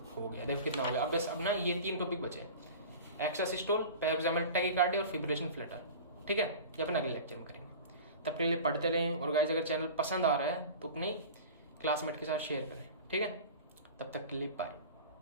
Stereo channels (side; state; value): both; inverted; correlation -0.35